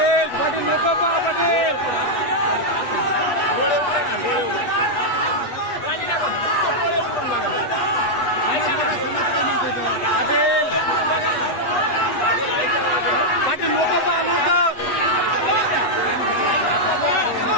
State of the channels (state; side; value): late; right; 8.3 ms